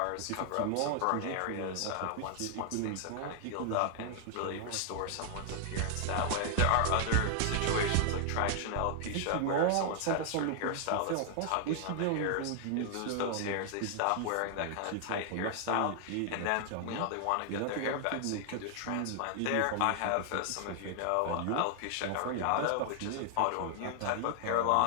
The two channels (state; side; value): different; both; correlation 0.00